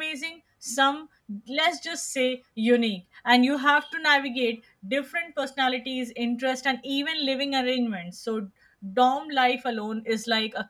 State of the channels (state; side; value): identical; both; correlation 1.00